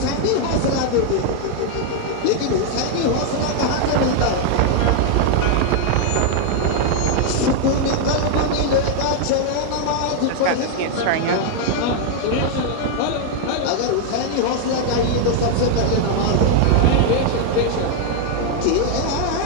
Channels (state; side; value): different; both; correlation 0.00